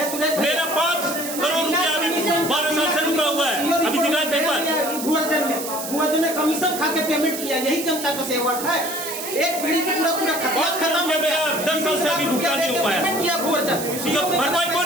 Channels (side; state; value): right; noise; hiss, 7 dB below the sound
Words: मेरा 5 करोड़ रुपया अभी 12 साल से रुका हुआ है। अभी दिखाए पेपर भुआजन ने कमीशन खा के पेमेंट किया, यही जनता का सेवक है। एक पीढ़ी की पूरा खत्म हो गया। 10 साल से अभी भुगतान नहीं हो पाया। इसका भरपाई कौन